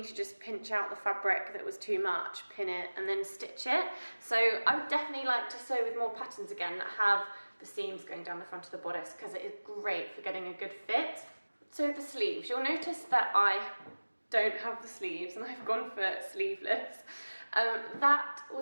to just pinch out the fabric that was too much, pin it, and then stitch it. So I would definitely like to sew with more patterns again that have the seams going down the front of the bodice, because it is great for getting a good fit. So the sleeves, you'll notice that I don't have the sleeves and I've gone for sleeveless. That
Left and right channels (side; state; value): both; inverted; correlation -1.00